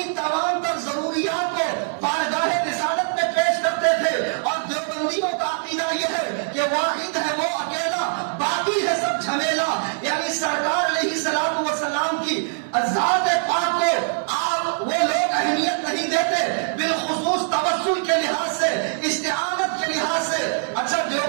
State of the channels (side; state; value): left; silent; 64 dB below the other